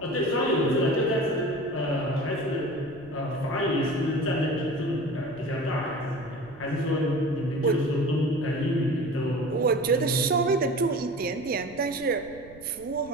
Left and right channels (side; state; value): right; noise; rumble, 22 dB below the sound